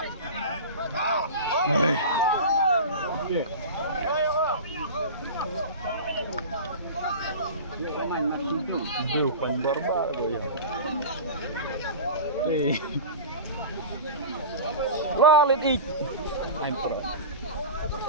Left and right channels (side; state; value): both; inverted; correlation -0.31